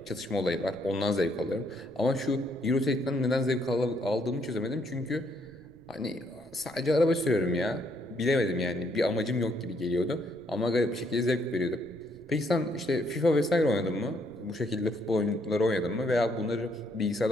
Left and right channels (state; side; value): noise; right; rumble, 25 dB below the sound